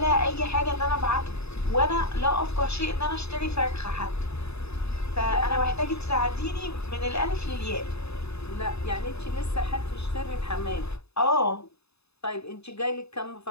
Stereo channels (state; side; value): late; right; 0.79 ms